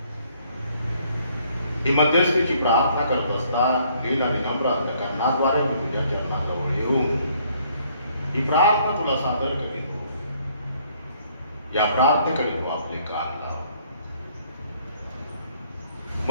ही मध्यस्थीची प्रार्थना करत असता लील आणि नम्र अंतकरणाद्वारे मी तुझ्या चरणाजवळ येऊन ही प्रार्थना तुला सादर करीतो. या प्रार्थनेकडे तू आपले कान लाव.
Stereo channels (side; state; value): both; inverted; correlation -0.64